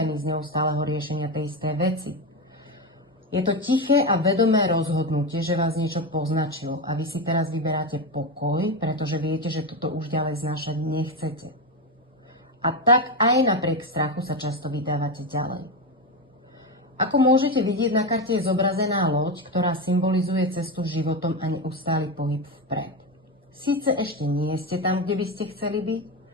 z neustáleho riešenia tej istej veci. Je to tiché a vedomé rozhodnutie, že vás niečo poznačilo a vy si teraz vyberáte pokoj, pretože viete, že toto už ďalej znášať nechcete. A tak aj napriek strachu sa často vydávate ďalej. Ako môžete vidieť, na karte je zobrazená loď, ktorá symbolizuje cestu životom a neustály pohyb vpred. Síce ešte nie ste tam, kde by ste chceli byť,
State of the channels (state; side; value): normal; both; correlation 0.14